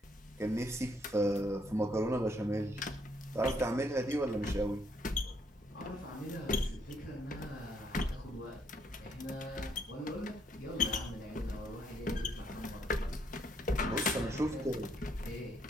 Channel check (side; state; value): both; normal; correlation 0.71